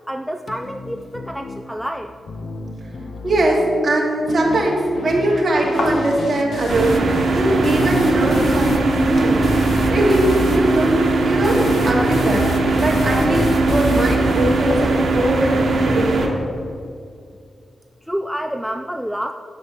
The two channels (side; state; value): both; normal; correlation 0.86